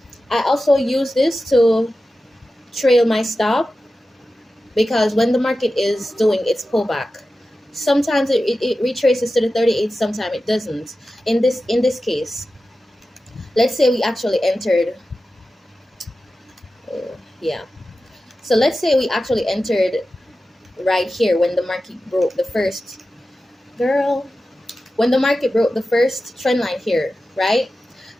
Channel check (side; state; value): both; normal; correlation 0.93